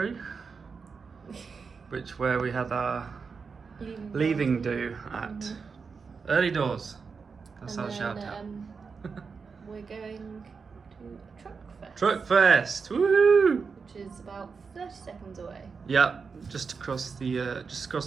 where we had our leaving do at. Early Doors. That's our shout out. We're going to Truckfest. Truckfest, woohoo! Which is about 30 seconds away. Yeah, just across the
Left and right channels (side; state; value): left; quieter; 5.2 dB